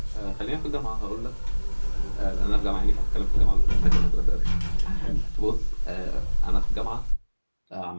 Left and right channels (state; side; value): inverted; both; correlation -1.00